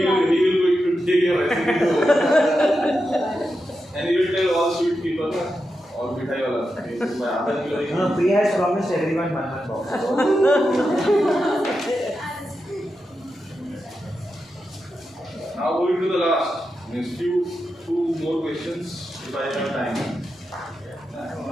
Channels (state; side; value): normal; both; correlation 0.88